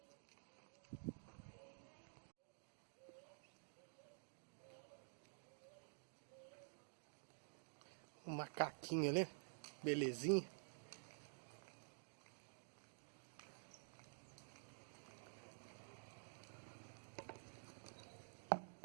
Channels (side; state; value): left; silent; digital silence